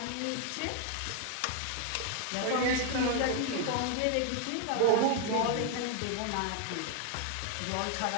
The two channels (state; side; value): different; both; correlation 0.00